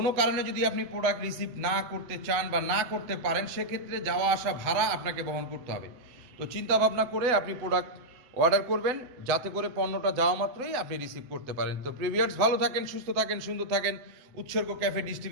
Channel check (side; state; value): left; late; 7.9 ms